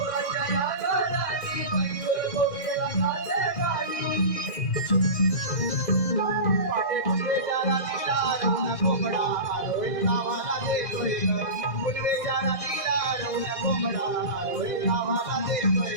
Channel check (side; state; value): right; late; 1.6 ms